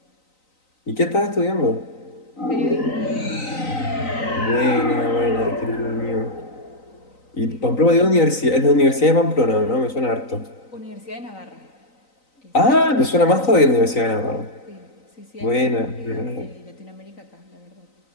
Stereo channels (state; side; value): late; right; 3.9 ms